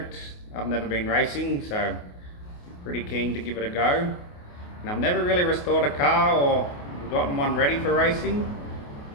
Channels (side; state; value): right; late; 28 ms